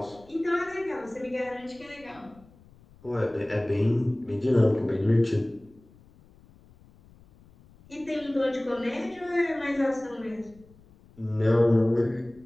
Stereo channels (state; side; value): noise; left; rumble, 26 dB below the sound